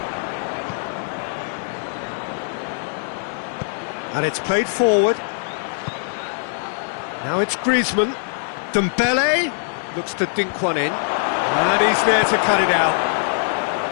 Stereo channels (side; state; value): right; silent; digital silence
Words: And it's played forward. Now it's Griezmann. Dembele looks to dink one in. And he's there to cut it out.